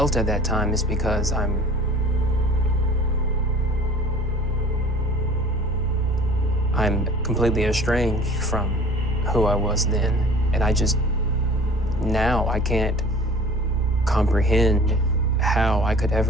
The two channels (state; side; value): normal; both; correlation 0.46